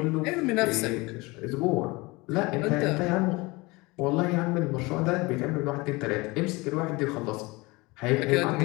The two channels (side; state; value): right; quieter; 23.8 dB